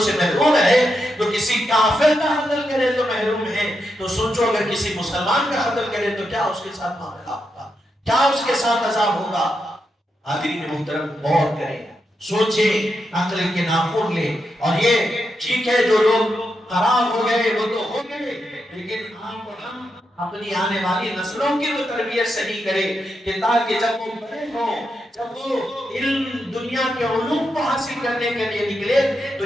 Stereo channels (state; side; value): normal; both; correlation 0.84